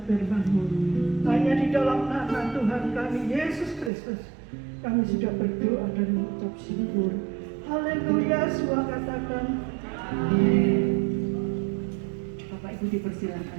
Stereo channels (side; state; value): left; drops out; at 3.9 s